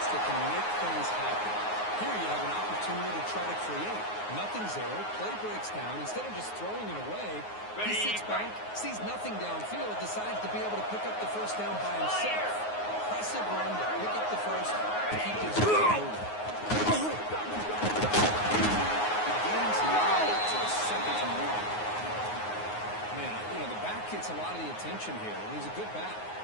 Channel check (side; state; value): right; late; 9.5 ms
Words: that can make things happen. Here you have an opportunity to try to create. Nothing's there. Play breaks down. Instead of just throwing it away, he sits back, sees nothing downfield, decides to be able to pick up the first down by himself. Impressive run to pick up the first, keep this game moving. The game's now to a 2nd and 1. Man, you know, the back gets a lot of the attention here, and he's a good back.